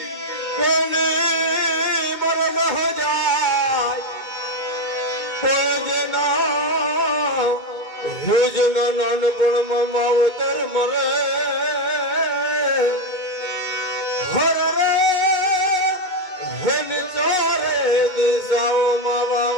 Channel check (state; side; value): late; right; 2.2 ms